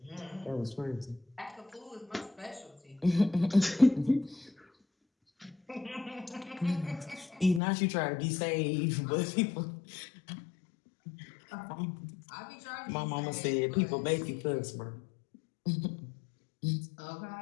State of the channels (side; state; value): right; drops out; at 7.6 s